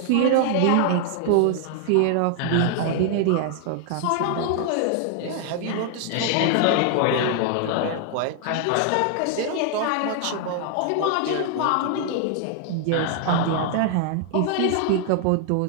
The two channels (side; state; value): both; different; correlation 0.00